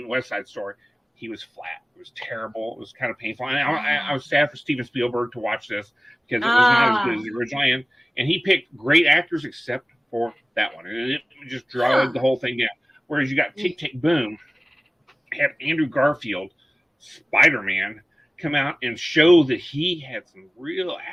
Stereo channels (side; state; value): both; normal; correlation 0.98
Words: West Side Story. He was flat. It was terrible. It was kind of painful. And I was sad for Steven Spielberg to watch this, because it was not as good as the original. And he picked great actors except for that one. And it just dragged the whole thing down. Whereas you got Tick, Tick, Boom, had Andrew Garfield, Spider-Man, come out and show that he had some real